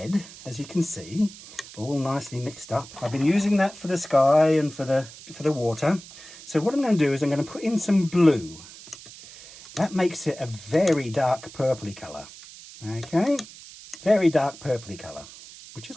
as you can see, all nicely mixed up. I've been using that for the sky and for the water. So what I'm going to do is I'm going to put in some blue. That makes it a very dark purpley colour. Okay, very dark purpley colour, which is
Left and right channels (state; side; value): noise; right; hiss, 17 dB below the sound